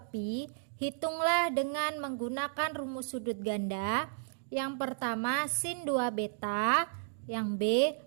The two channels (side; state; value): left; silent; digital silence